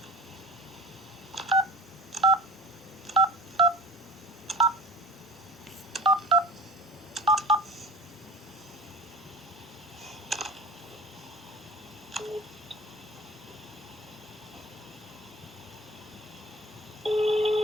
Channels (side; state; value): both; normal; correlation 0.37